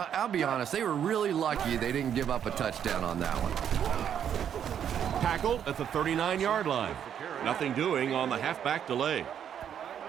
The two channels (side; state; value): left; quieter; 9.0 dB